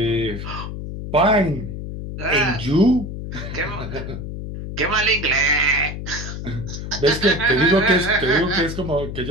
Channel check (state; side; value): noise; left; hum, 7 dB below the sound